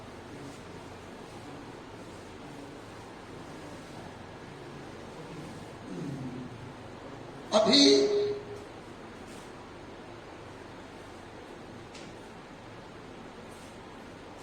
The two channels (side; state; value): both; identical; correlation 1.00